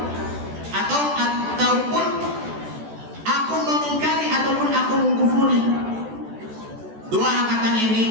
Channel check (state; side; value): late; left; 14 ms